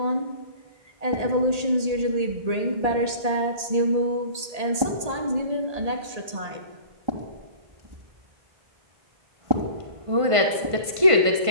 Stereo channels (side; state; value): left; late; 1.5 ms